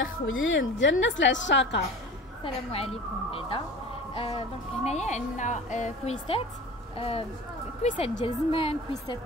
ديال الناس العشاقه. السلام عليكم بعدا. دونك هنايا عندنا كويسات ديال زمان،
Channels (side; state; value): both; normal; correlation 0.37